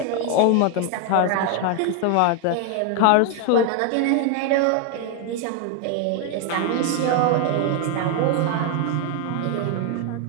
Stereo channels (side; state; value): both; different; correlation 0.00